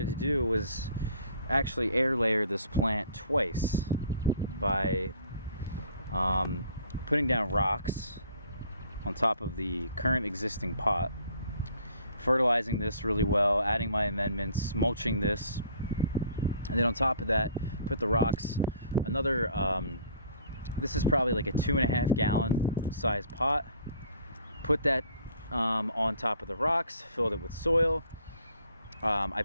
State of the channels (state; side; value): inverted; both; correlation -0.56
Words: to do was actually air layer this plant twice by putting down rocks on top of the current existing pot, fertilizing this really well, adding my amendments, mulching this, and then on top of that put the rocks. Another this is probably like a 2.5 gallon size pot. Put that on top of the rocks, filled it with soil. I